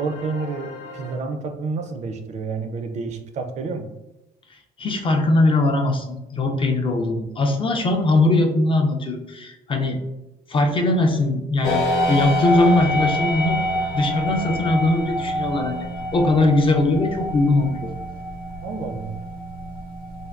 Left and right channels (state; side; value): normal; both; correlation 0.68